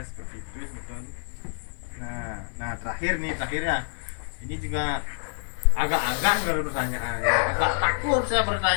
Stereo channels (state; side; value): silent; right; digital silence